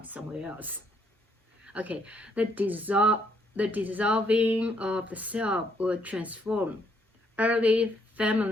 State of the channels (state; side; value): normal; both; correlation 0.71